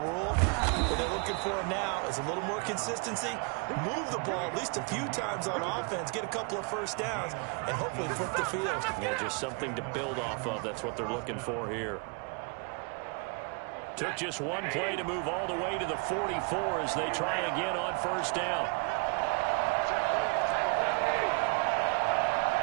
What they're looking for now is a little more consistency, move the ball at least a few times on offense, get a couple of first downs, and hopefully flip the field. Yeah, just something to build off of. That's what they're looking for here. Took just one play to move all the way to the 44 as they try again on 1st down.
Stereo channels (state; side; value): quieter; left; 32.7 dB